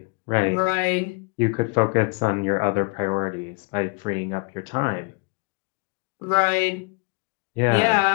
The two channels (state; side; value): quieter; right; 33.0 dB